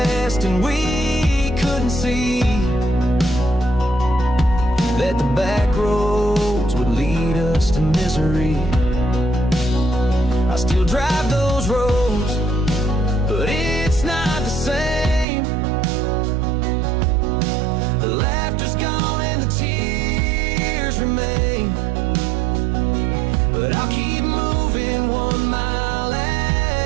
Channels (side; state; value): left; drops out; at 15.2 s